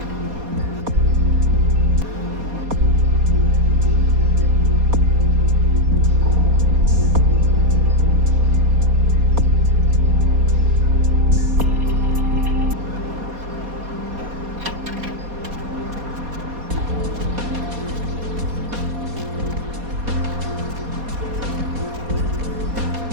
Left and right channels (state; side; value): late; left; 4.2 ms